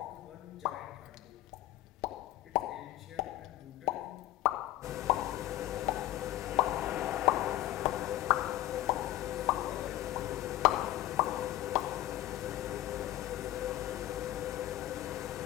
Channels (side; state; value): right; quieter; 15.3 dB